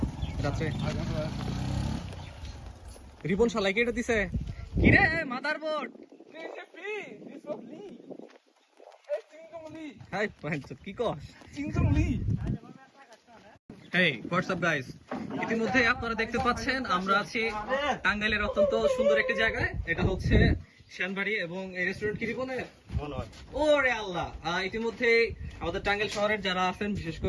রাত্রে রিবন শালাইকে এটা দিছে কিরে মাদারবোর্ড। হাই পাঁচশো কি কস? হেই হোয়াটসঅ্যাপ গাইস, ইতিমধ্যে আপনারা দেখতে পাচ্ছেন আমরা আছি টাঙ্গাইলের অত্যন্ত সুন্দর একটি জায়গায়। এটা হচ্ছে শ্যানবাড়ি এবং এই রেস্টুরেন্ট কি রিপনের? ওরে আল্লাহ, ইতিমধ্যে আমাদের টাঙ্গাইল শহরের যারা আছেন বিশেষ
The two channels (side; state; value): both; identical; correlation 1.00